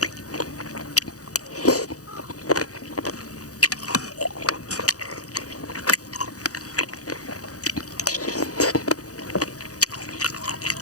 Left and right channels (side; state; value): right; late; 0.67 ms